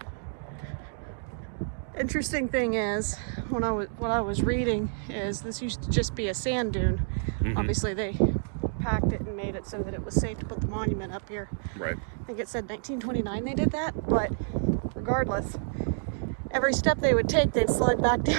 Interesting thing is, what I was reading is this used to just be a sand dune. Mm-hmm. Obviously, they packed it and made it so that it was safe to put the monument up here. Right. I think it said 1929 they did that, but regardless, every step they would take, they'd slide back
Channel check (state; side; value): silent; left; digital silence